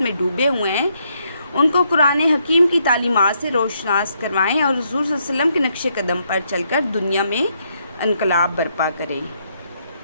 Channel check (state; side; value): inverted; both; correlation -0.75